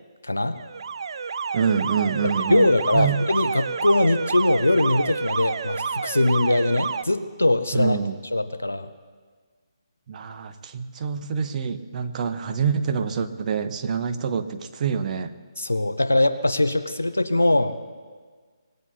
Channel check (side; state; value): both; inverted; correlation -0.87